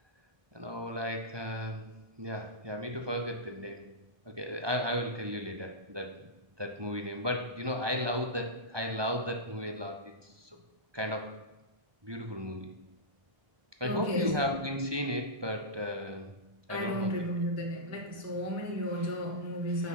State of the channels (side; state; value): left; late; 1.2 ms